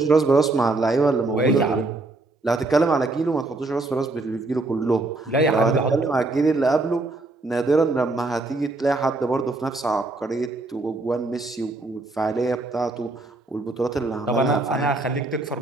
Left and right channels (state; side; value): quieter; left; 3.1 dB